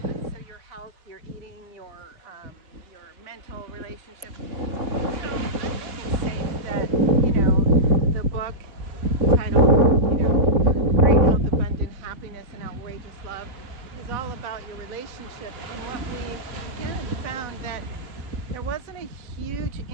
your health, your eating, your mental relationship. So I think it's safe that, the book titled, Great Health, Abundant Happiness, and Outrageous Love is all about your relationship. And what we kind of found that there wasn't a huge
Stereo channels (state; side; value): late; left; 3.5 ms